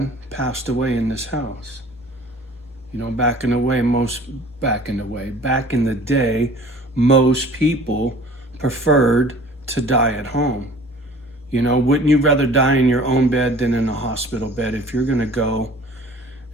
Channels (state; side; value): normal; both; correlation 0.48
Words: passed away in this house. You know, back in the day, most people preferred to die at home. You know, wouldn't you rather die in your own bed than in a hospital bed? If you're gonna go